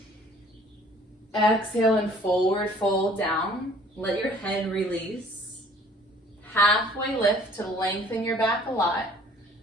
Exhale and forward fold down. Let your head release. Halfway lift to lengthen your back a lot.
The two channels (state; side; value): normal; both; correlation 0.55